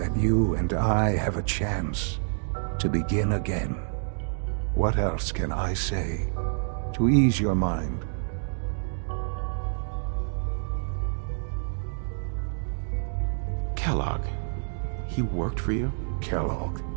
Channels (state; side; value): silent; left; digital silence